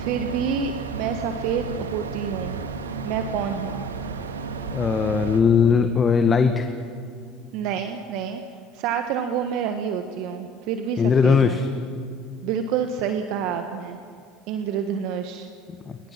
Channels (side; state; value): both; normal; correlation 0.49